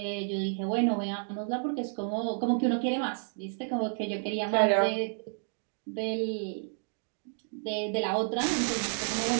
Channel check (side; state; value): left; silent; digital silence